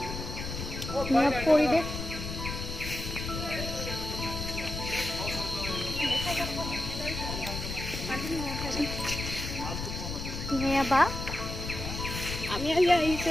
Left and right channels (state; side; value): noise; left; rumble, 6 dB below the sound